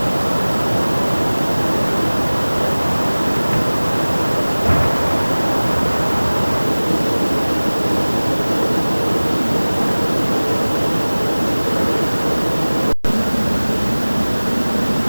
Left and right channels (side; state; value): both; inverted; correlation -1.00